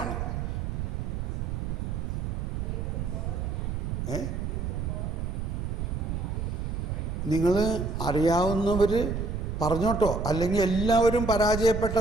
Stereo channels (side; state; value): right; noise; rumble, 3 dB below the sound